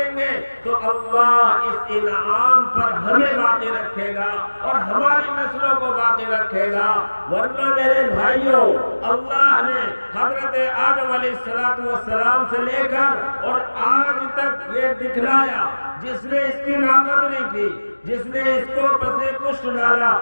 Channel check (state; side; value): inverted; both; correlation -1.00